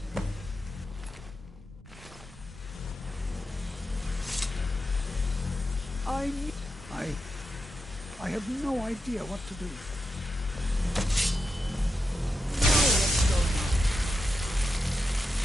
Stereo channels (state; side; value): normal; both; correlation 0.87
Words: I have no idea what to do.